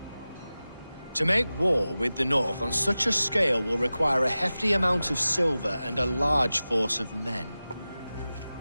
To make war with the North on such a scale will require a hefty amount of silver and a large force of men.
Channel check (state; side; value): inverted; both; correlation -0.95